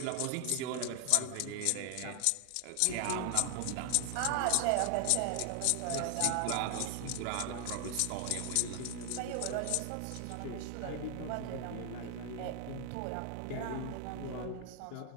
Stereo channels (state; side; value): different; both; correlation 0.00